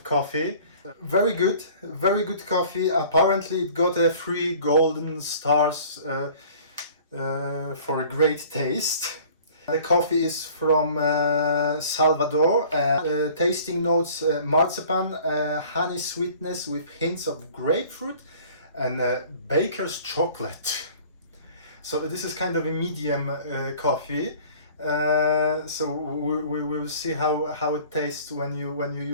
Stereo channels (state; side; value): inverted; both; correlation -0.49